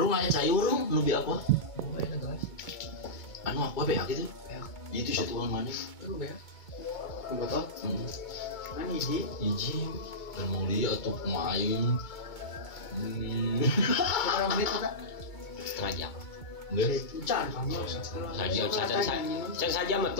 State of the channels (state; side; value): late; right; 2.2 ms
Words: aya cayur rung nu bi apa? Oh, aya gelas. Anu apa beak gitu? Beak. Itu satuan mana? Lu beak. Botol? Kan hiji dan mau lihat tuh pemain. Berapa menit kita? Setengah jam. Enggak. Can kamu. Saja mah